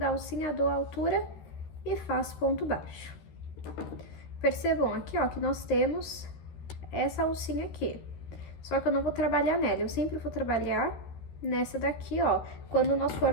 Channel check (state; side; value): late; right; 13 ms